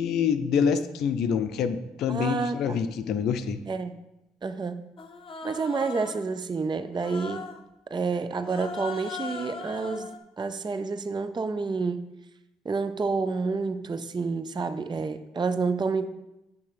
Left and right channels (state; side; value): normal; both; correlation 0.68